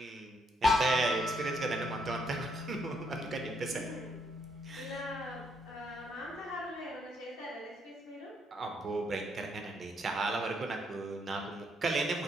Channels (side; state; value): both; normal; correlation 0.73